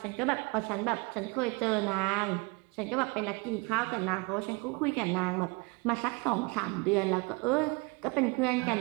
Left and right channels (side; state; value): left; quieter; 28.9 dB